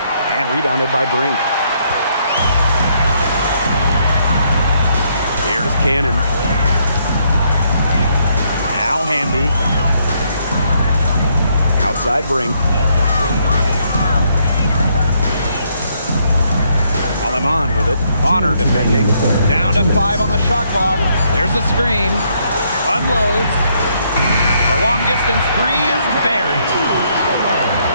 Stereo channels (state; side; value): inverted; both; correlation -0.72